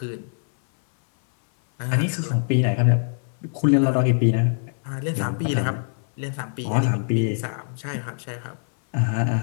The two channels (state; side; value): silent; right; 63 dB below the other